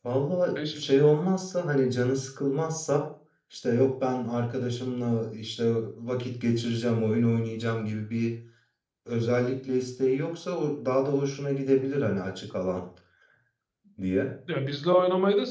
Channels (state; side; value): identical; both; correlation 1.00